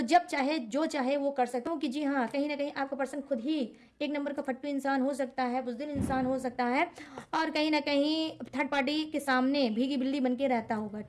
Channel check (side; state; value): both; identical; correlation 1.00